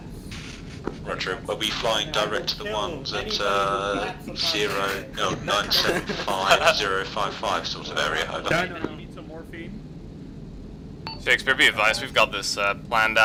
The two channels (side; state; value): both; identical; correlation 1.00